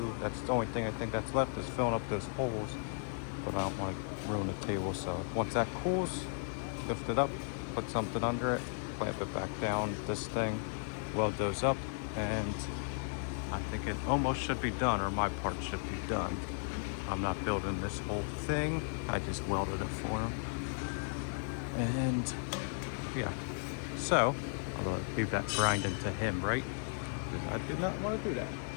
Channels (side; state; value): right; silent; digital silence